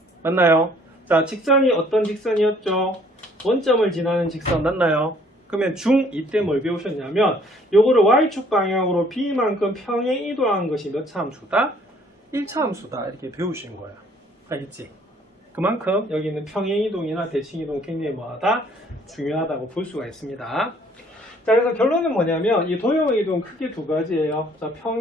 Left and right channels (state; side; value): normal; both; correlation 0.60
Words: 맞나요? 자, 직선이 어떤 직선이었죠? 원점을 지나는 직선 맞나요? 그러면 중2 때 뭘 배우셨냐면 요거를 y축 방향으로 b만큼 평행 이동한 것이 몇 차 함수다? 1차 함수다. 이렇게 배우신 거예요. 알겠지? 그만큼 여기 있는 평행 이동이나 대칭 이동 굉장히 뭐하다? 중요하다고 볼 수가 있습니다. 자, 그래서 결론은 뭐냐면 이 도형의 이동은 크게 두 가지예요. 자,